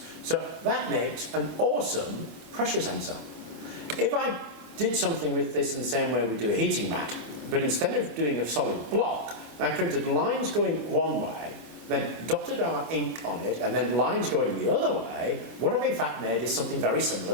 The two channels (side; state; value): left; late; 25 ms